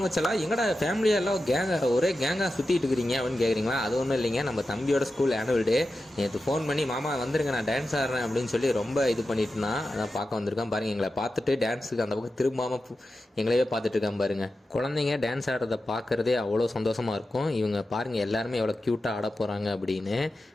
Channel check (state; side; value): normal; both; correlation 0.91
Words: செல்லா. எங்கடா ஃபேமிலியெல்லாம் ஒரே கேங்காக சுற்றிட்டு இருக்கிறீங்க அப்படின்னு கேட்குறீங்களா? அது ஒன்றும் இல்லைங்க, நம்ம தம்பியோட ஸ்கூல் ஆனுவல் டே. நேற்று ஃபோன் பண்ணி மாமா வந்துருங்க, நான் டான்ஸ் ஆடுறேன் அப்படின்னு சொல்லி ரொம்ப இது பண்ணிட்டு இருந்தான். அதான் பார்க்க வந்திருக்கான் பாருங்கள். எங்களை பார்த்துட்டு டான்ஸுக்கு அந்த பக்கம் திரும்பாமல் எங்களையே பார்த்துட்டு இருக்கான் பாருங்க. குழந்தைங்க டான்ஸ் ஆடுறதை பார்க்குறதே அவ்வளோ சந்தோஷமாக இருக்கும். இவங்க பாருங்கள் எல்லாருமே எவ்வளோ க்யூட்டாக ஆட போகிறாங்க அப்படின்னு